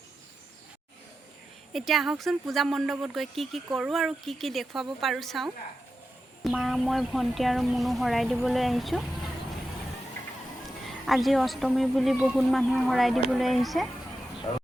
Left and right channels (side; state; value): both; normal; correlation 0.90